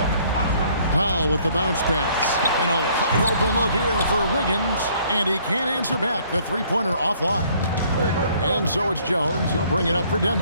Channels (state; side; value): inverted; both; correlation -0.61